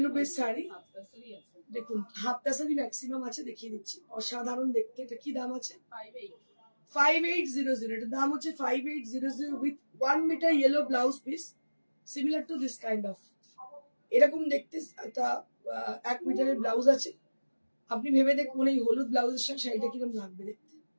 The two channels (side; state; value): both; inverted; correlation -1.00